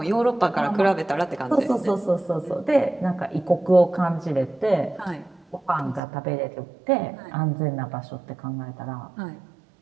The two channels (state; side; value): drops out; left; at 6.0 s